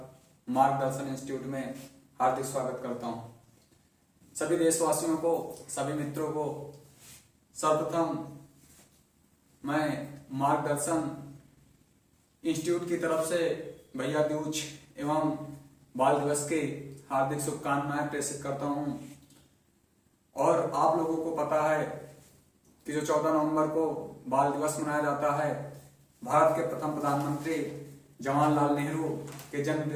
मार्गदर्शन इंस्टीट्यूट में हार्दिक स्वागत करता हूं। सभी देशवासियों को, सभी मित्रों को सर्वप्रथम मैं मार्गदर्शन इंस्टीट्यूट की तरफ से भैया दूज एवं बाल दिवस की हार्दिक शुभकामनाएं प्रेषित करता हूं। और आप लोगों को पता है कि जो 14 नवंबर को बाल दिवस मनाया जाता है, भारत के प्रथम प्रधानमंत्री जवाहरलाल नेहरू के जन्म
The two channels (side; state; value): both; identical; correlation 1.00